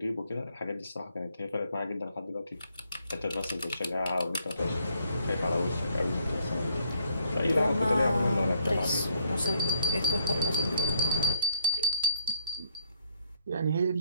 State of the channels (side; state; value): both; inverted; correlation -0.66